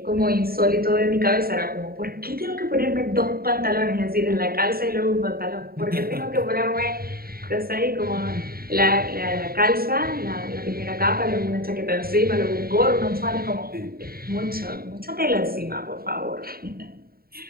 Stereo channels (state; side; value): late; left; 0.43 ms